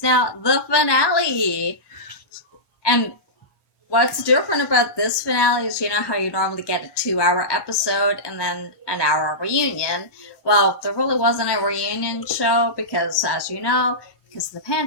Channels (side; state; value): right; late; 1.1 ms